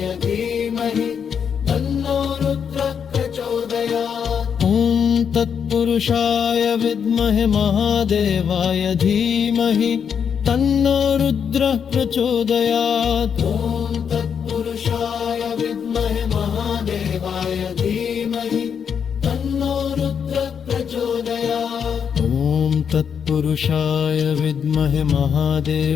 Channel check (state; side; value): quieter; right; 7.3 dB